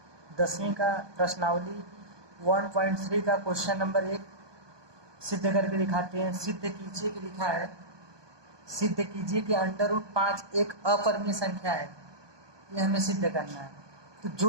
10वीं का प्रश्नावली 1.3 का क्वेश्चन नंबर 1 सिद्ध करके दिखाते हैं। सिद्ध कीजिए कि लिखा है, सिद्ध कीजिए कि √5 एक अपरिमेय संख्या है। ये हमें सिद्ध करना है। तो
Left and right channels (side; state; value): left; late; 1.2 ms